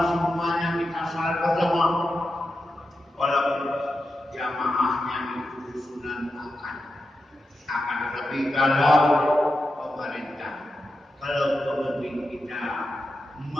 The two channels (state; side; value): normal; both; correlation 0.89